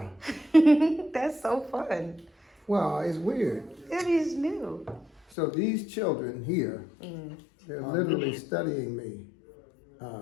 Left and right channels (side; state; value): right; drops out; at 5.2 s